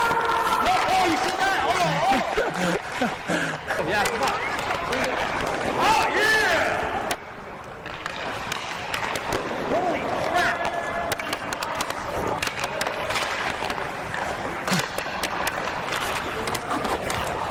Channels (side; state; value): both; identical; correlation 1.00